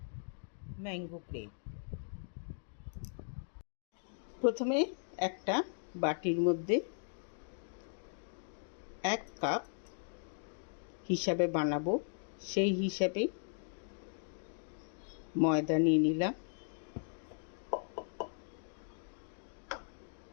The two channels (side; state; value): right; silent; digital silence